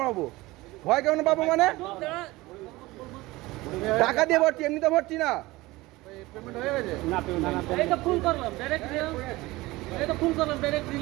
পাবো? ভয় কেন পাবো মানে? টাকা দিয়ে ভরছি, এমনিতে ভরছি না। পেমেন্ট হয়ে গেছে না? পেমেন্ট এটা ফুল করলাম, ডাইরেক্ট দিলাম। এটা ফুল করলাম, ডাইরেক্ট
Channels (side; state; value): left; quieter; 20.1 dB